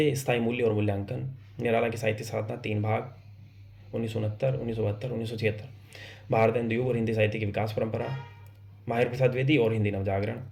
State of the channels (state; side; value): identical; both; correlation 1.00